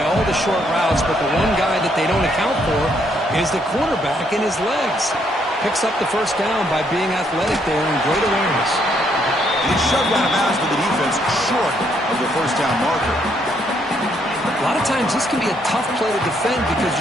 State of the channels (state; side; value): normal; both; correlation 0.72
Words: all the short routes, but the one guy that they don't account for is the quarterback and his legs. Picks up the first down by being athletic there and great awareness. And he's shoved out of bounds by the defense short of the first down marker. A lot of times this can be a tough play to defend because